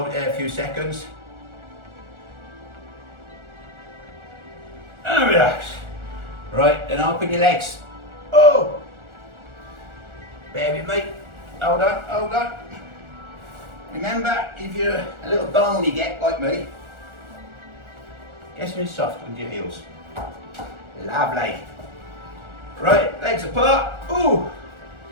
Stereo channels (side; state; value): left; late; 1.4 ms